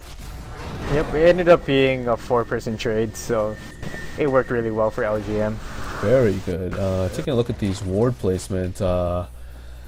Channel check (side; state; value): both; identical; correlation 1.00